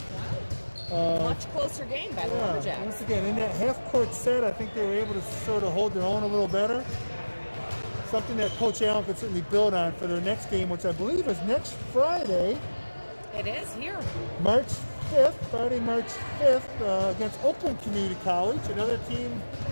Much closer game by the Lumberjacks. Once again, in that half-court set, I think they were able to sort of hold their own a little better. Something that Coach Allen could certainly build on for their next game, which I believe is next Friday. It is here. March 5th, Friday, March 5th, against Oakland Community College, another team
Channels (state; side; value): inverted; both; correlation -1.00